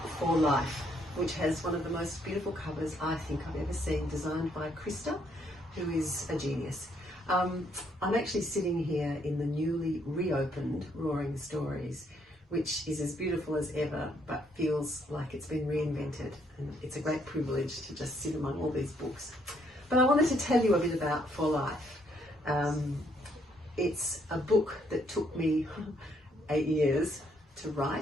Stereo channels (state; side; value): normal; both; correlation 0.71